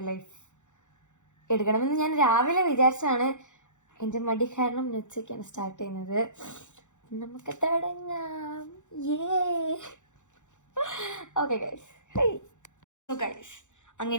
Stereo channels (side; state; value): right; late; 0.85 ms